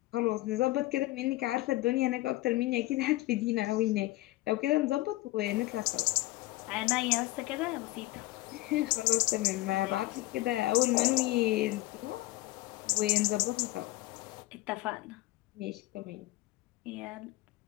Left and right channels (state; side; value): quieter; right; 18.7 dB